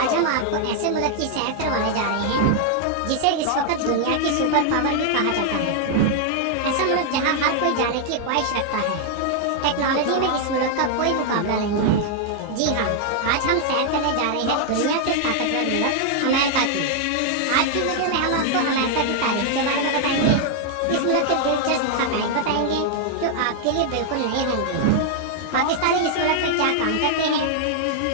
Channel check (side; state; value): both; different; correlation 0.00